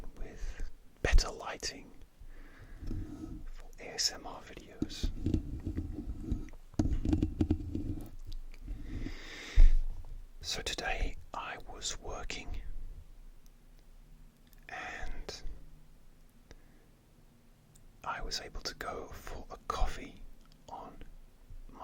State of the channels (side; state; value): both; identical; correlation 1.00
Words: with better lighting for ASMR videos. So today I was working and I was able to go for a coffee on